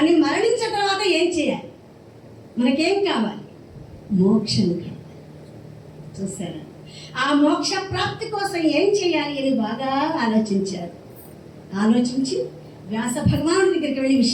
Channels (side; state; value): both; identical; correlation 1.00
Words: మరణించిన తర్వాత ఏం చేయాలి, మనకేం కావాలి, మోక్షం కావాలి. చూసారా, ఆ మోక్ష ప్రాప్తి కోసం ఏం చేయాలి అని బాగా ఆలోచించారు. ఆలోచించి వ్యాస భగవానుడి దగ్గరికి వెళ్ళి